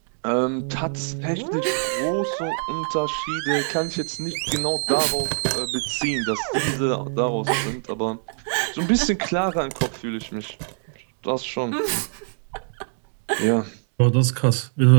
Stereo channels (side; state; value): left; silent; digital silence